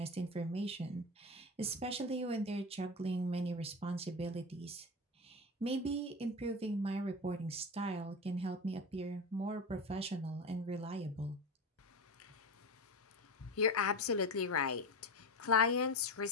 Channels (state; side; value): normal; both; correlation 0.23